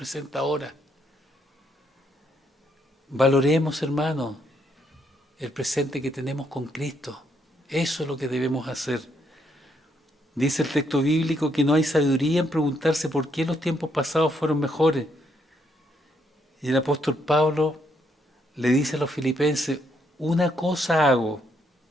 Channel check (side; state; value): both; normal; correlation 0.74